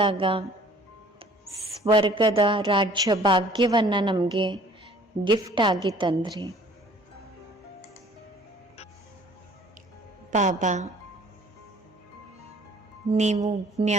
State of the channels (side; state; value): both; normal; correlation 0.53